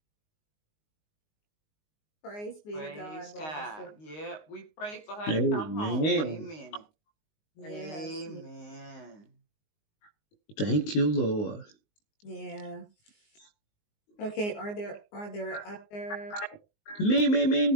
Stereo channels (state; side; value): late; right; 19 ms